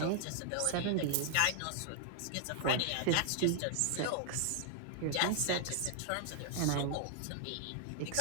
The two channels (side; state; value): both; different; correlation 0.00